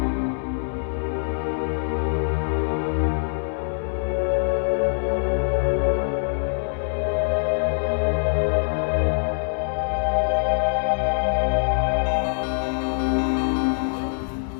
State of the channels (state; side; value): silent; right; 63 dB below the other